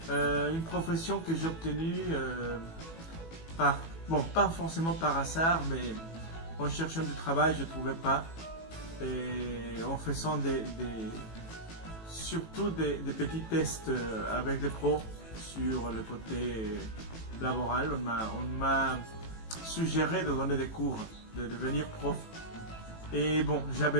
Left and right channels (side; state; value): right; late; 18 ms